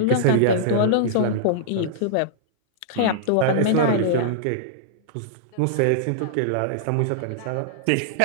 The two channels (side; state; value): both; different; correlation -0.02